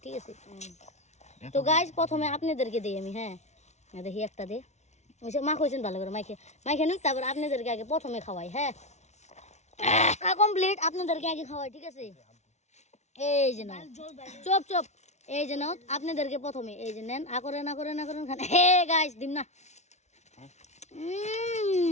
ঠিক আছে, তো গাইস প্রথমে আপনাদেরকে দিই আমি। হ্যাঁ দেখি একটা দে মা কইছেন ভালো করে মাইকে নুক, তারপর আপনাদেরকে আগে প্রথমে খাওয়াই। হ্যাঁ কমপ্লিট, আপনাদেরকে আগে খাওয়াই। ঠিক আছে, এই যে না চপ এই যে নাও আপনাদেরকে প্রথমে এই যে নেন, না করেন খান। হে গাইস দিম না,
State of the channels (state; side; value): late; right; 0.32 ms